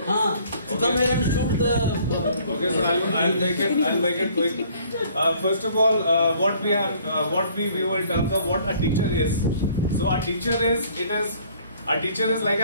So come here and shoot the. okay, so I'll make it quick. First of all, what we view in terms of what a teacher is. So a teacher is like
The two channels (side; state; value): both; inverted; correlation -0.58